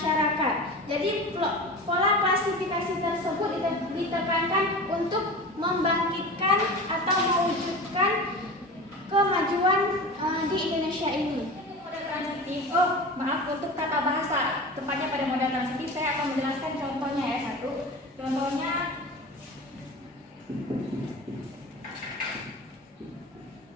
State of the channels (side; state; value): both; normal; correlation 0.32